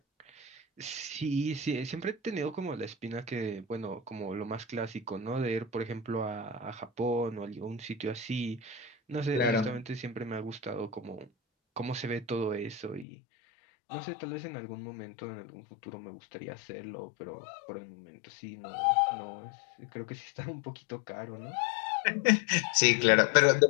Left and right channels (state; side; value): drops out; right; at 13.1 s